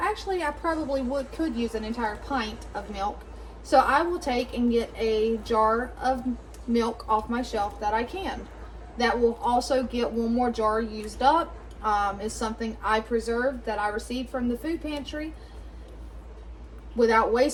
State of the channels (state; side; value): identical; both; correlation 1.00